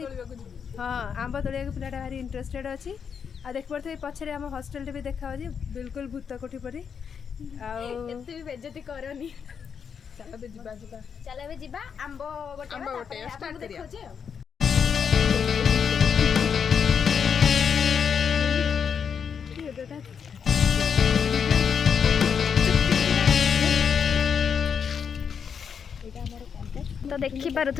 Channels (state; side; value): quieter; right; 6.9 dB